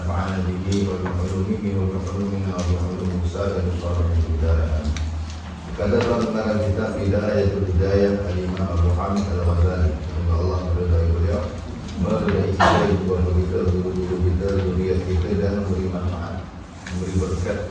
به وبعلومه وبعلومنا وبعلوم سائر الصالحين في الدارين. Kata tentang kitab Hidayatul Hidayah Al-Imam Abu Hamid Al-Ghazali, semoga Allah meridai beliau, meridai kita, keluarga kita, guru-guru kita, zuriat kita, dan memberi manfaat, memberi berkat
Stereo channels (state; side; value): identical; both; correlation 1.00